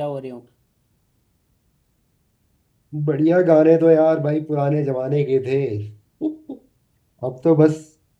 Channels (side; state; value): both; identical; correlation 1.00